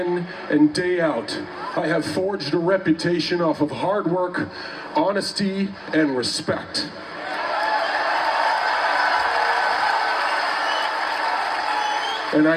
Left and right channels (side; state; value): both; identical; correlation 1.00